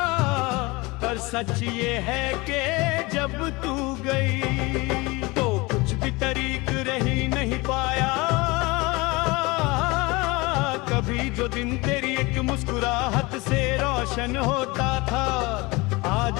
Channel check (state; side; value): quieter; right; 24.0 dB